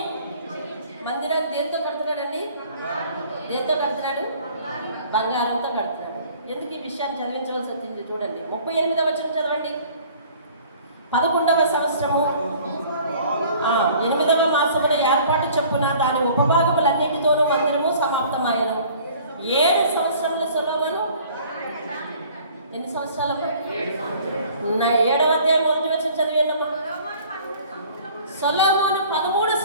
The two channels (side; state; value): both; inverted; correlation -0.51